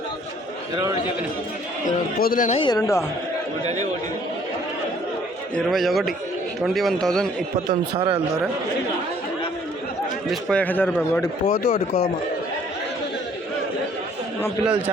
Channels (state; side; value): normal; both; correlation 0.59